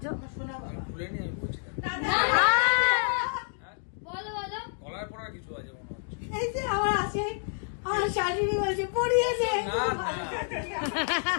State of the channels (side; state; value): right; silent; 57 dB below the other